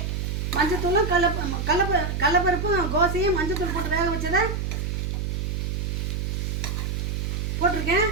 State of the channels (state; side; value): noise; right; hum, 1 dB below the sound